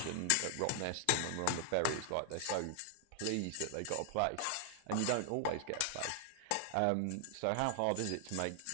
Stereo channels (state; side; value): different; both; correlation 0.00